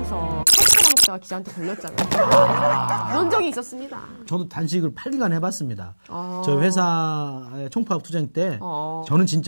칼퇴라 먹다가 기자한테 걸렸잖아요. 그런 적이 있었습니다. 저도 단식을 8일간 해봤습니다. 저희 회사의 총파업 투쟁 때 저는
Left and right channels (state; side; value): inverted; both; correlation -1.00